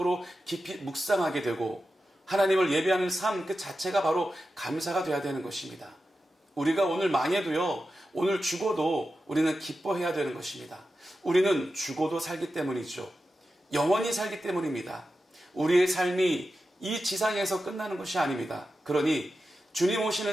깊이 묵상하게 되고 하나님을 예배하는 삶 그 자체가 바로 감사가 되어야 되는 것입니다. 우리가 오늘 망해도요, 오늘 죽어도 우리는 기뻐해야 되는 것입니다. 우리는 죽어도 살기 때문이죠. 영원히 살기 때문입니다. 우리의 삶이 이 지상에서 끝나는 것이 아닙니다. 그러니 주님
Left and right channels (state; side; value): normal; both; correlation 0.91